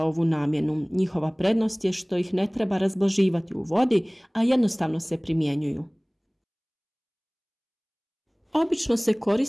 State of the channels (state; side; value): identical; both; correlation 1.00